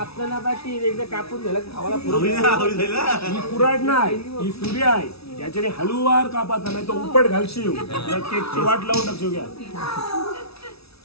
पाठी एकदा कापून झालं खावाला. ही कुऱ्हाड नाही, ही सुरी आहे. त्याच्याने हळूवार कापाचा, नाही तो उपट घालशील. केकची वाट लावून टाकशील. घ्या.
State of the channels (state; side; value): late; right; 0.77 ms